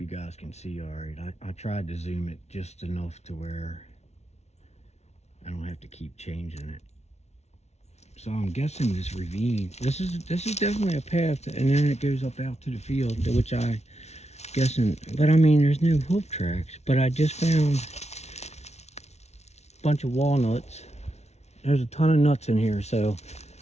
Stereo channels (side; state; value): right; late; 0.32 ms